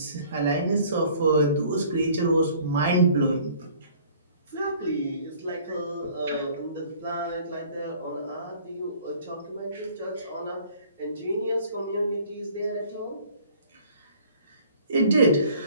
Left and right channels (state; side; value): inverted; both; correlation -0.53